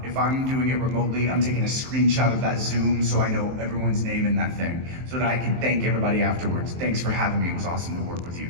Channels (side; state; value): left; late; 23 ms